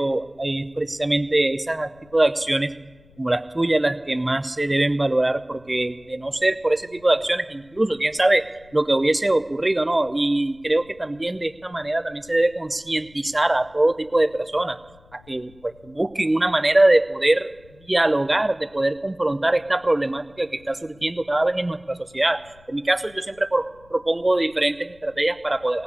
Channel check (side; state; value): left; noise; rumble, 28 dB below the sound